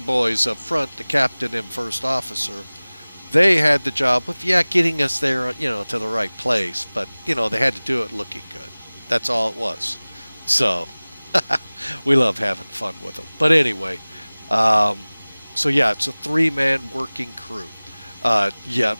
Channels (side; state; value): both; inverted; correlation -1.00